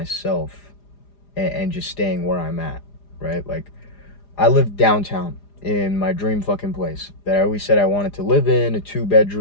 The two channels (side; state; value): right; late; 4.9 ms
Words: and just staying where I'm at, right? Like, I live downtown in my dream fucking place that I always said I wanted to live in, a